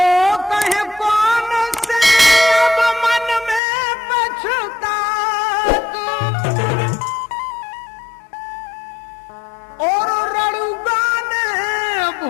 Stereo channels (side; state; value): right; drops out; at 3.6 s